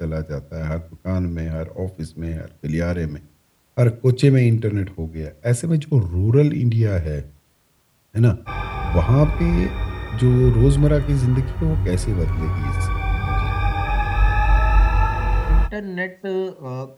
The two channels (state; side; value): identical; both; correlation 1.00